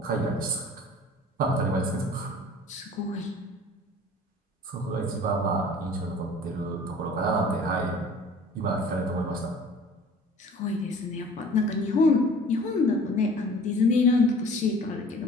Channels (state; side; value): normal; both; correlation 0.46